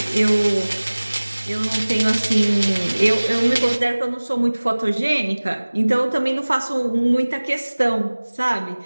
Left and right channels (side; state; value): both; inverted; correlation -1.00